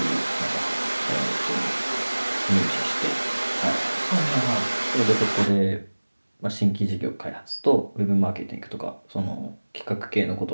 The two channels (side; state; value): both; inverted; correlation -1.00